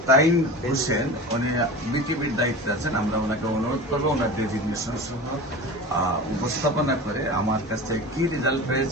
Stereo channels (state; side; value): normal; both; correlation 0.33